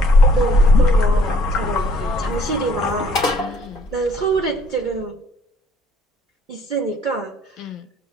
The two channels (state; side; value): normal; both; correlation 0.61